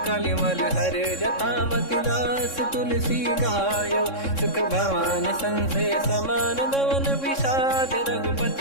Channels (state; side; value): late; right; 3.6 ms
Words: कलिमल हर जटामति, दास तुलसी गायो। सुख भवन संशय समान गवन, विषाद